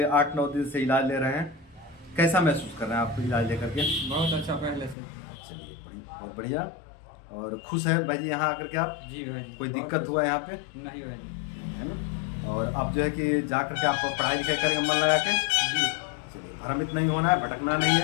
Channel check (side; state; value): right; drops out; at 5.0 s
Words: 8-9 दिन से इलाज ले रहे हैं, कैसा महसूस कर रहे हैं आप इलाज लेकर के? बहुत अच्छा पहले से। चलिए बहुत बढ़िया। और खुश है भाई जी यहाँ आकर के आप? जी भाई जी। कोई बहुत दिक्कत अच्छा। हुआ है यहाँ पे? नहीं भाई जी। है ना। और आप जो है कि जा करके आप पढ़ाई लिखाई करेंगे मन लगा के? जी। चलिए भ्रमित नहीं होना है, भटकना नहीं